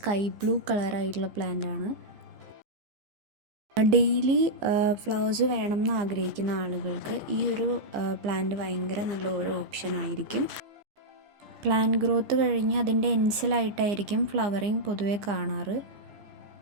ബ്ലൂ കളറായിട്ടുള്ള പ്ലാന്റാണ്. ഡെയിലി ഫ്ലവേഴ്സ് വേണം എന്ന് ആഗ്രഹിക്കുന്ന ആളുകൾക്ക് ഈ ഒരു പ്ലാന്റ് ഭയങ്കര നല്ല ഒരു ഓപ്ഷൻ ആയിരിക്കും. പ്ലാന്റ് ഗ്രോത്ത് കഴിഞ്ഞ് അതിൻ്റെ എൻസിലായിട്ടായിരിക്കും ഫ്ലവറിങ് പൊതുവെ കാണാറ്.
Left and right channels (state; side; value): late; left; 15 ms